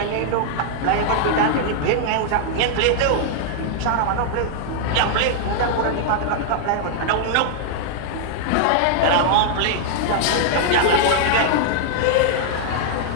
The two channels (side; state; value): both; different; correlation 0.00